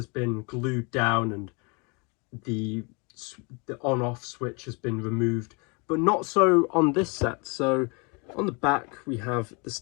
been glued down and the on-off switch has been removed, but not so on this set. So on the back we have the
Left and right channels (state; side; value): quieter; right; 31.8 dB